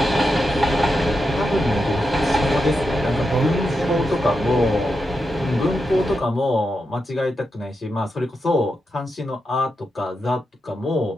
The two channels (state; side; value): normal; both; correlation 0.87